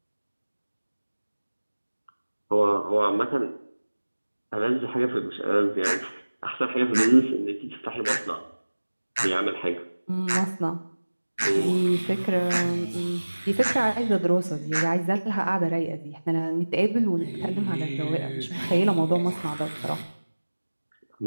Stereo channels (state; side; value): inverted; both; correlation -1.00